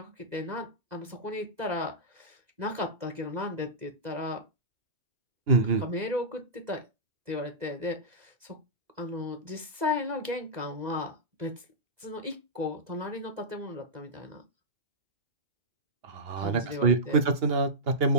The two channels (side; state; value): left; late; 2.0 ms